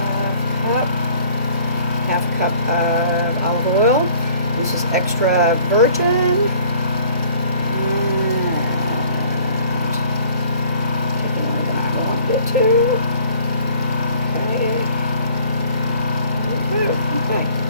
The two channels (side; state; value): both; inverted; correlation -0.55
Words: Half cup of olive oil. This is extra virgin. Too. Okay. Okay.